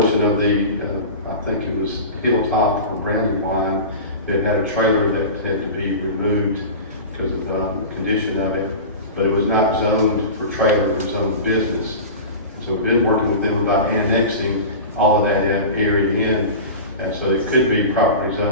of the, I think it was Hilltop or Brandywine, that had a trailer that had to be removed because of the condition of it, but it was not zoned for trailer, it was zoned business. So we've been working with them about annexing all of that area in, and so it could be properly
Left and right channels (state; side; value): inverted; both; correlation -0.30